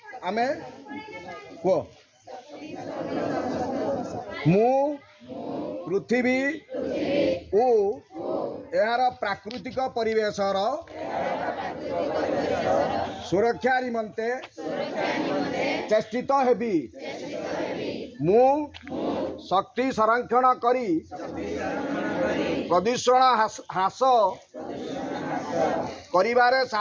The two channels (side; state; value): both; identical; correlation 1.00